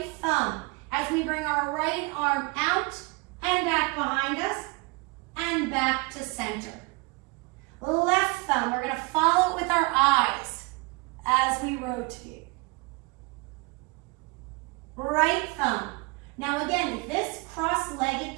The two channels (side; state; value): left; quieter; 27.2 dB